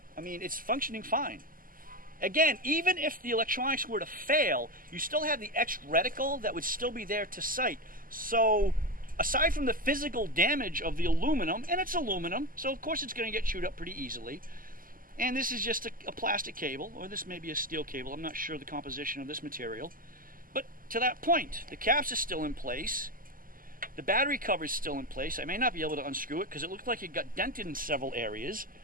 I mean, it's functioning fine. Again, even if the electronics were to fail, you still have the etched reticle that would still be there to sight. So, aside from the physical damage of the aluminum, and it's aluminum, so of course it's going to get chewed up pretty easily, and this is just a plastic cable, or this may be a steel cable, I'm not sure the composition of this material, but to that point, the caps are still in place, the battery cover is still in place. I may not be able to unscrew it because it looked like it got dented in several areas.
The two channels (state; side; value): late; left; 0.41 ms